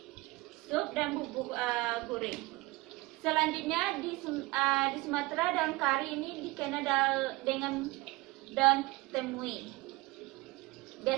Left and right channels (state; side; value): quieter; left; 21.5 dB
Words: sup dan bubuk goreng. Selanjutnya di Sumatera daun kari ini dikenal dengan daun temui.